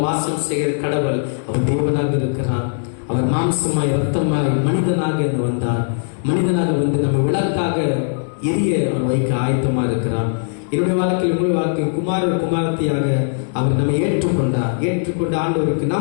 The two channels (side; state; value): right; silent; 66 dB below the other